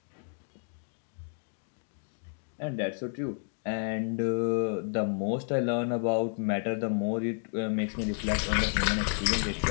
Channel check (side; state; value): right; silent; digital silence